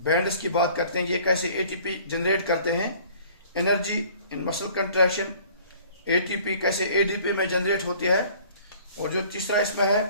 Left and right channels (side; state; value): both; inverted; correlation -0.52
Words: की बात करते हैं, ये कैसे एटीपी जनरेट करते हैं, energy in muscle contraction, ATP कैसे एडीपी में जनरेट होती है। और जो तीसरा इसमें है